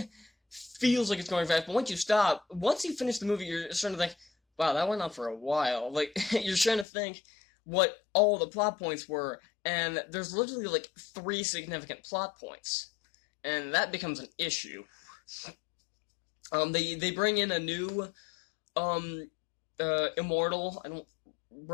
feels like it's going fast, but once you finish the movie, you're starting to think, wow, that went on for a while. Like, you're trying to think what all the plot points were, and there's literally, like, 3 significant plot points, and that becomes an issue. They bring in a new, immortal. I don't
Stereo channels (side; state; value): right; drops out; at 6.9 s